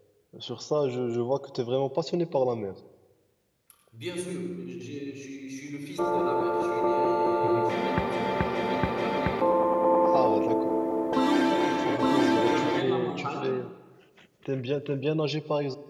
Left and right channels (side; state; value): both; identical; correlation 1.00